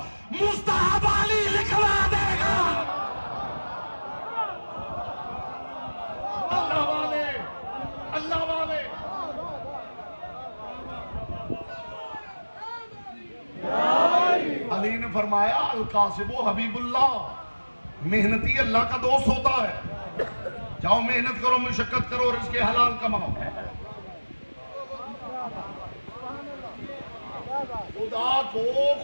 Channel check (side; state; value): both; inverted; correlation -1.00